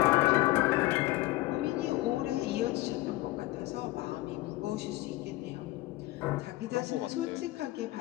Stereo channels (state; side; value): quieter; right; 18.9 dB